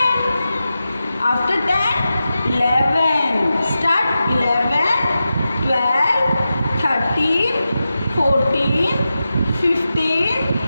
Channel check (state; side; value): inverted; both; correlation -0.92